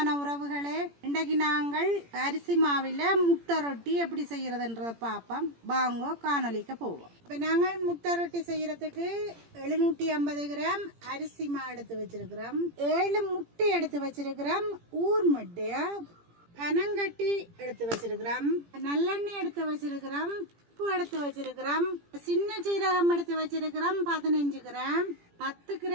உறவுகளே, இன்றைக்கு நாங்கள் அரிசி மாவில் முட்டை ரொட்டி எப்படி செய்யறதுன்றத பார்ப்போம். வாங்கோ காணொலிக்க போவோம். இப்போ நாங்கள் முட்டை ரொட்டி செய்யறதுக்கு 750 கிராம் அரிசி மா எடுத்து வச்சிருக்கிறோம், 7 முட்டை எடுத்து வச்சிருக்கிறோம், ஊர் முட்டை, பனங்கட்டி எடுத்து வச்சிருக்கிறோம், நல்லெண்ணெய் எடுத்து வச்சிருக்கிறோம், உப்பு எடுத்து வச்சிருக்கிறோம், சின்ன சீரகம் எடுத்து வச்சிருக்கிறோம் 15 கிராம், 10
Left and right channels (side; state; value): left; late; 17 ms